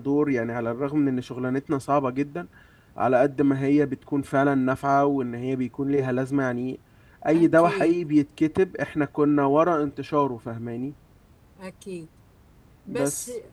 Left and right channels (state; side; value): identical; both; correlation 1.00